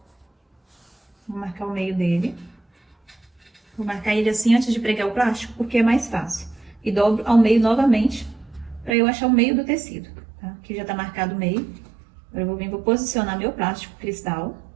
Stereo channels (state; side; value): drops out; left; at 9.0 s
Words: Vou marcar o meio dele. Vou marcar ele assim antes de pregar o plástico, porque é mais fácil. E dobro ao meio novamente, para eu achar o meio do tecido, tá? Aqui já tá marcado o meio. Agora eu vou posicionar meu plástico cristal,